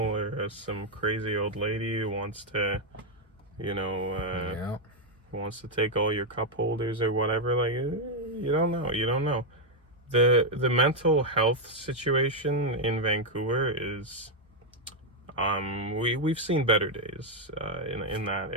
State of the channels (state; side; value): normal; both; correlation 0.01